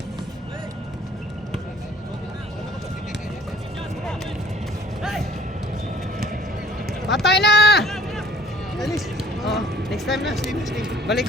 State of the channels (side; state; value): both; normal; correlation 0.54